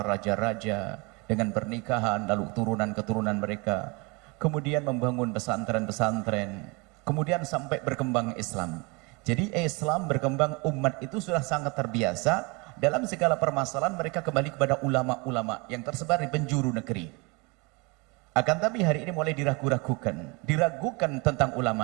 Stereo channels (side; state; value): left; quieter; 28.2 dB